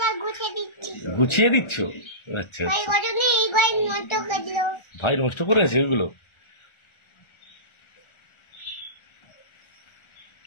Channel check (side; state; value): right; late; 1.4 ms